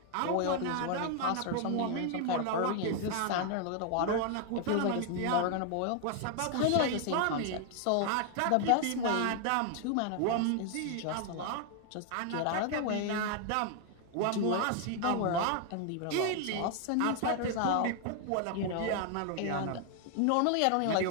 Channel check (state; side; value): different; both; correlation 0.00